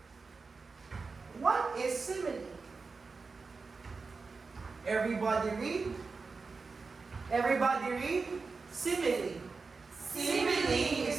What is simile? Everybody read. Everybody read. Simile. Simile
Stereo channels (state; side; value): quieter; left; 4.4 dB